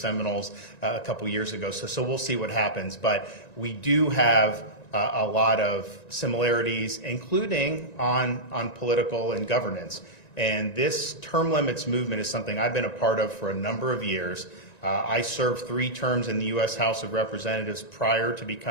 a couple years ago, so we'll see what happens. But we do have a lot of similarities, including on political and governance. And this term limits movement is something I've been a part of for a number of years. I served 3 terms in the U.S. House of Representatives prior to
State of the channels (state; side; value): late; right; 1.9 ms